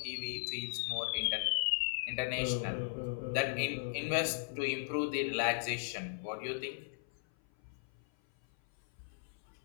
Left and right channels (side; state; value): right; silent; 53 dB below the other